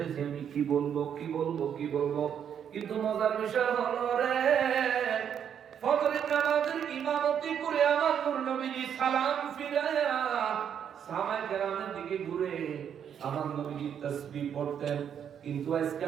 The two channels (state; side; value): quieter; left; 8.5 dB